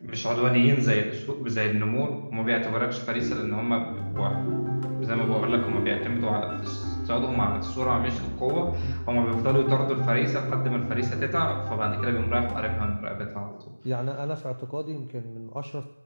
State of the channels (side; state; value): both; inverted; correlation -1.00